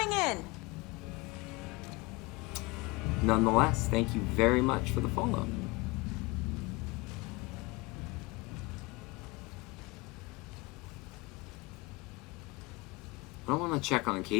in. Nonetheless, thank you very much for the follow. I don't want to check on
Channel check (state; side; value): quieter; right; 24.2 dB